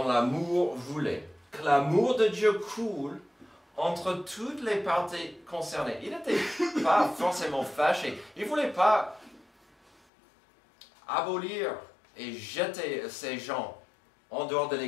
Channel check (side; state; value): right; drops out; at 9.9 s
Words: l'amour, voulait que l'amour de Dieu coule entre toutes les parties concernées. Il n'était pas forcément fâché. Il ne voulait pas abolir et jeter ces gens en dehors de